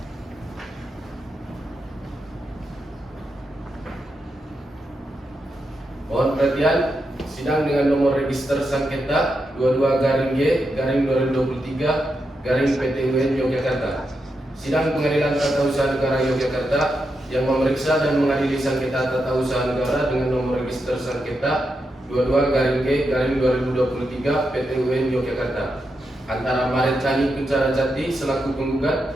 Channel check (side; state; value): both; normal; correlation 0.85